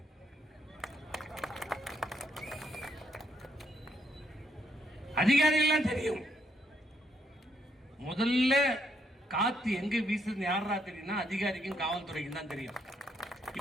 அதிகாரிகள் தெரியும். முதல்ல காத்து எங்க வீசுது யாரா தெரியும்னா அதிகாரிக்கும் காவல்துறைக்கும் தான் தெரியும்.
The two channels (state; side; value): normal; both; correlation 0.74